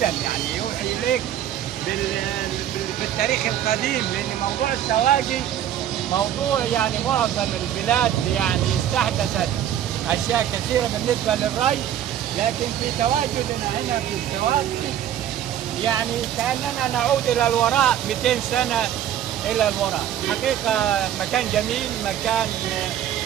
يعني يوحي إليك بالتاريخ القديم، لأن موضوع السواقي موضوع يعني معظم البلاد يعني استحدثت أشياء كثيرة بالنسبة للري، لكن في تواجدنا هنا في السواقي يعني كأننا نعود إلى الوراء 200 سنة إلى الوراء. حقيقة مكان جميل، مكان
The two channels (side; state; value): left; quieter; 10.9 dB